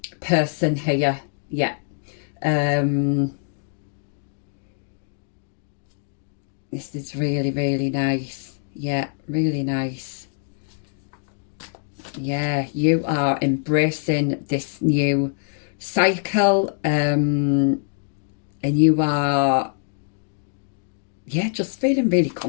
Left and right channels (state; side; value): silent; right; digital silence